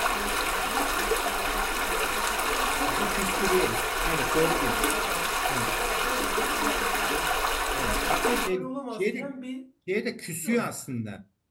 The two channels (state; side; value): identical; both; correlation 1.00